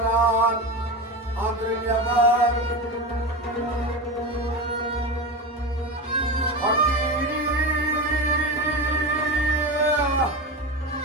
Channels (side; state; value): both; normal; correlation 0.22